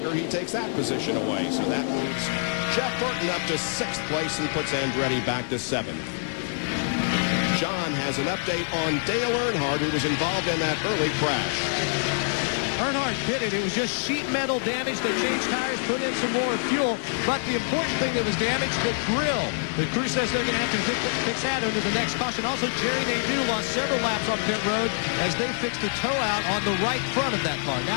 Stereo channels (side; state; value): right; silent; digital silence